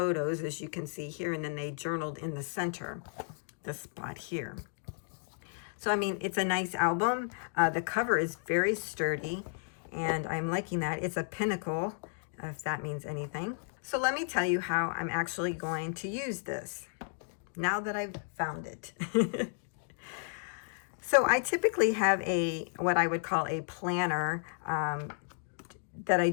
as you can see here, and then they journaled in the center, this spot here. So I mean, it's a nice album. The cover is very sturdy, and I'm liking that. It's a pinnacle, if that means anything. So let me tell you how I'm actually going to use this now that I've found it. So I typically have what I would call a planner that I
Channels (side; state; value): right; silent; digital silence